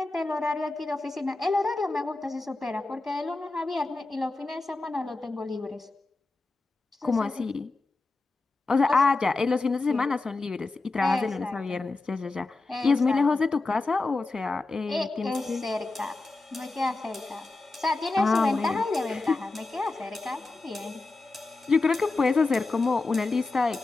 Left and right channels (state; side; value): quieter; right; 3.4 dB